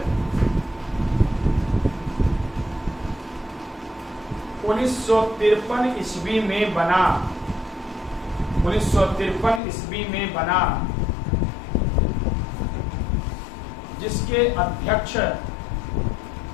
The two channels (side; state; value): right; drops out; at 9.6 s